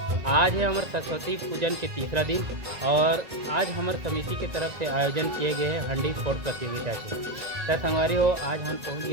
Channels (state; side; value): late; left; 1.9 ms